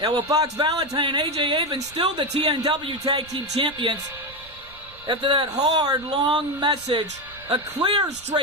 well, Fox Valentine and AJ Avon still the TNW Tag Team Champions. After that hard, long message, a clear,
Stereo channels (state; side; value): noise; right; rumble, 22 dB below the sound